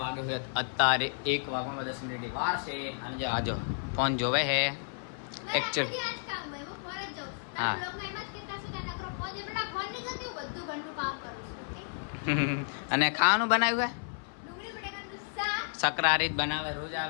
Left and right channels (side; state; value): right; silent; 56 dB below the other